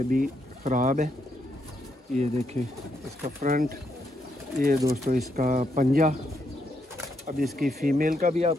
ख़राब है। ये देखें इसका फ्रंट, ये दोस्तों इसका पंजा। अब इसकी फ़ीमेल का भी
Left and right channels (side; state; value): both; normal; correlation 0.78